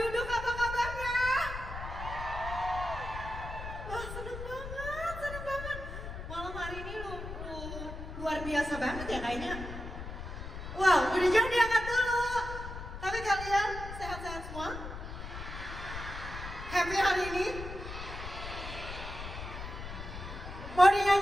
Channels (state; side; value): noise; left; rumble, 9 dB below the sound